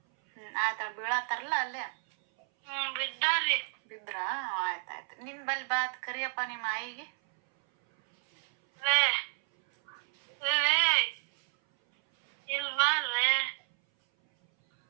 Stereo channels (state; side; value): silent; left; 57 dB below the other